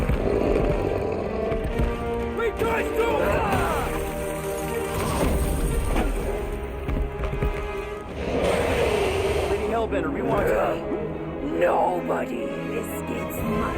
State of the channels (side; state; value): both; identical; correlation 1.00